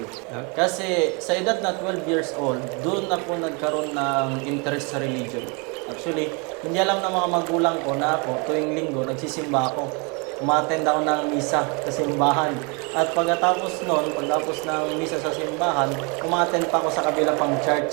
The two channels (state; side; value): quieter; left; 32.2 dB